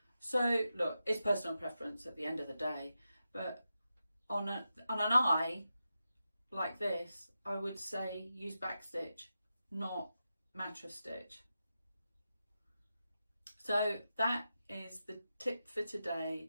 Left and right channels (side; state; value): both; inverted; correlation -0.89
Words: So look, it's personal preference at the end of the day, but on an eye like this, I would say use back stitch, not mattress stitch. So that is the tip for